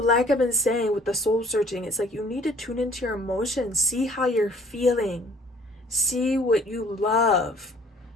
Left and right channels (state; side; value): normal; both; correlation 0.55